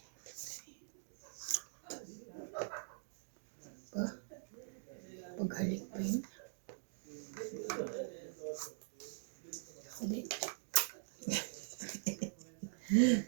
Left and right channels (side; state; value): left; silent; digital silence